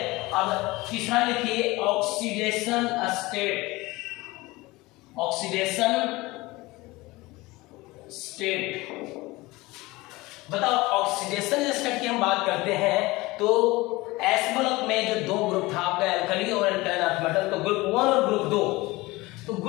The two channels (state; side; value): quieter; right; 21.2 dB